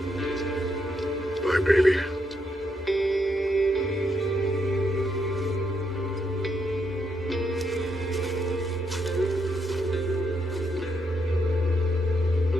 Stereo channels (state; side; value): normal; both; correlation 0.78